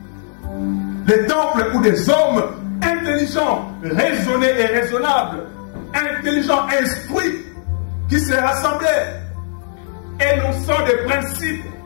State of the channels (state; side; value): silent; right; digital silence